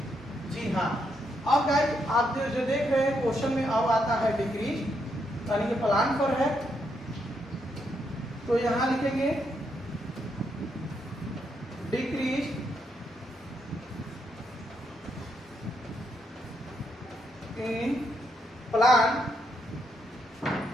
जी हाँ, अब गाइस आप जो देख रहे हैं क्वेश्चन में अब आता है डिक्रीज, यानी कि प्लान पर है, तो यहां लिखेंगे डिक्रीज इन प्लान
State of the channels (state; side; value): normal; both; correlation 0.78